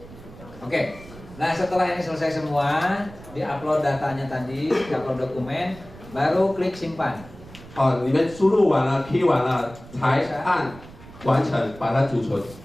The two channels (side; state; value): right; noise; rumble, 18 dB below the sound